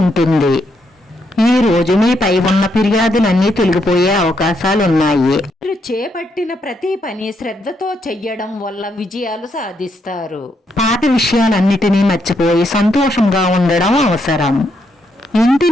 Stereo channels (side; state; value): both; normal; correlation 0.78